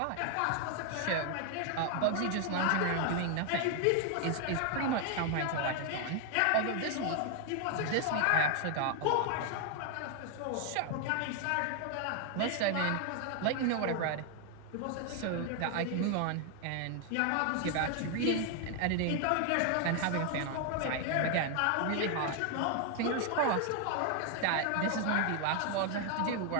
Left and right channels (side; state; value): both; different; correlation 0.00